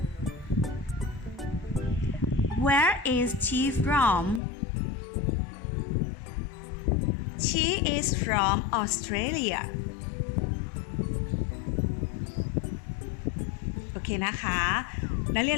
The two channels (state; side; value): drops out; right; at 4.4 s